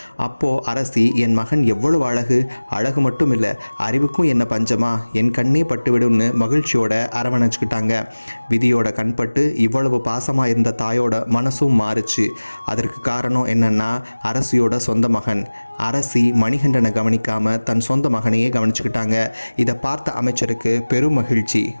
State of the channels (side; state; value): both; inverted; correlation -1.00